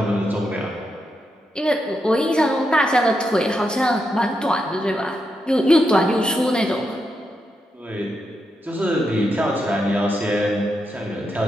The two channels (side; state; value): both; normal; correlation 0.84